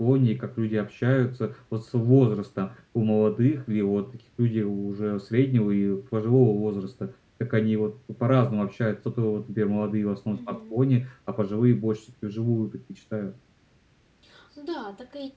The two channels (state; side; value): identical; both; correlation 1.00